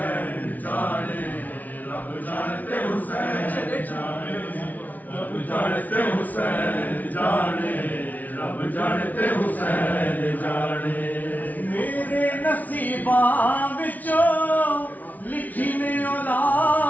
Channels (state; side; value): late; right; 0.076 ms